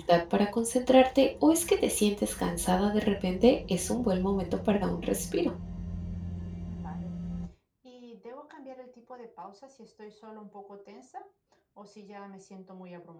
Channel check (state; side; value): identical; both; correlation 1.00